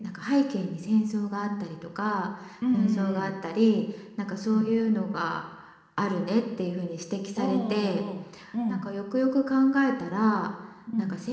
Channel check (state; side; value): identical; both; correlation 1.00